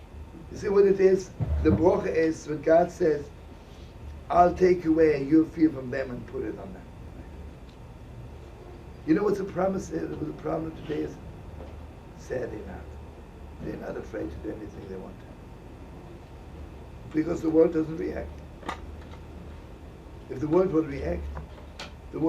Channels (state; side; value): identical; both; correlation 1.00